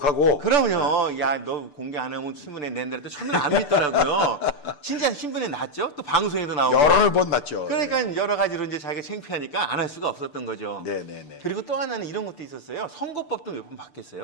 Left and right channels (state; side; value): late; right; 6.8 ms